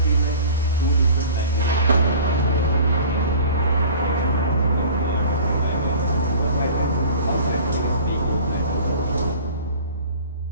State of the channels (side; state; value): both; inverted; correlation -0.44